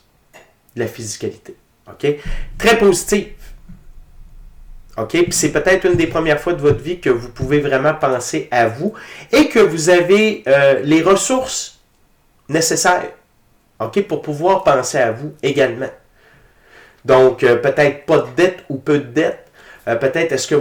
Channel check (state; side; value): identical; both; correlation 1.00